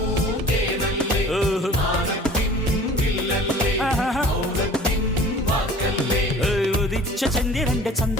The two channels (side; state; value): both; normal; correlation 0.45